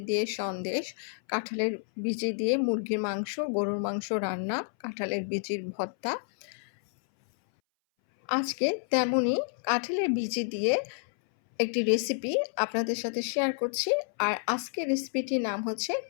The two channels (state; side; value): silent; right; 58 dB below the other